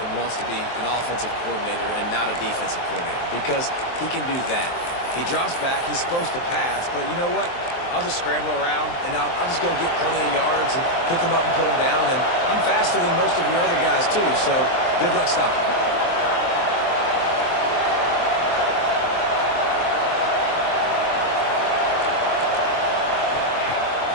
wants to be an offensive coordinator and not a defensive coordinator, because he can do that. He drops back. He's supposed to pass, but you know what? I'll just scramble around, and I'll just go get plenty of yards and pick them up and put them down. And I'm faster than most of your other guys, too, so good luck stopping.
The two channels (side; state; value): right; late; 23 ms